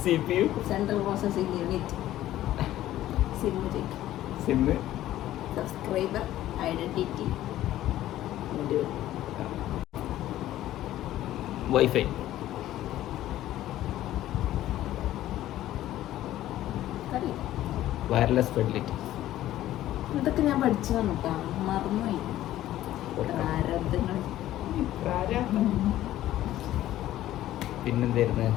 Central processing unit SIM ചോദിക്കും SIM? Subscriber identity wifi? Wireless facility? ഇതൊക്കെ ഞാൻ പഠിച്ചതാണ് കേട്ടോ മറന്നുപോയി പ്രാരബ്ധങ്ങൾ പിന്നെന്തായിരുന്നു?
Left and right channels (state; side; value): quieter; right; 13.8 dB